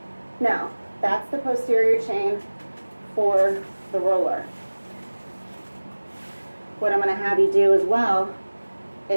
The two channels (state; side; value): inverted; both; correlation -1.00